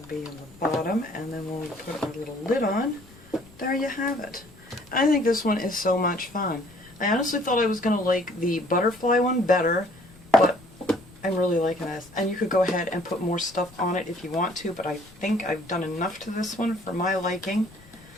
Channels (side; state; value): left; noise; rumble, 24 dB below the sound